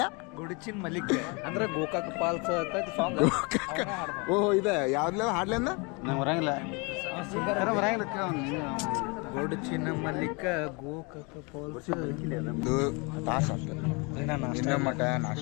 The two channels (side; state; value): right; quieter; 30.2 dB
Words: ಗೊಡಚಿನ್ ಮಲಿಕ್ ಅಂದ್ರೆ ಗೋಕಾಕ್ ಪಾಲ್ಸ್ ಅಂತ ಸಾಂಗ್. ಓಹೋ ಇದೆ ಯಾವ್ದ್ಲ ಹಾಡ್ಲಿಂದ ನಂಗೆ ಬರಂಗಿಲ್ಲ, ಗೊಡಚಿನ ಮಲಿಕ ಗೋಕಾಕ್ ಪಾಲ್ಸ್. ಇದು ತಾಸು ಅಷ್ಟೆ, ಇನ್ನೂ ಮಠ